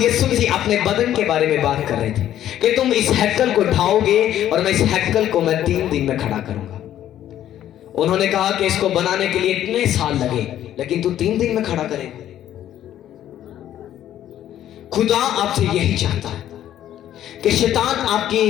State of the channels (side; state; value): right; quieter; 11.7 dB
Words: मसीह अपने बदन के बारे में बात कर रहे थे कि तुम इस हैकल को ढाओगे और मैं इस हैकल को मैं 3 दिन में खड़ा करूंगा। उन्होंने कहा कि इसको बनाने के लिए इतने साल लगे, लेकिन तू 3 दिन में खड़ा करेगा। खुदा आपसे यही चाहता है कि शैतान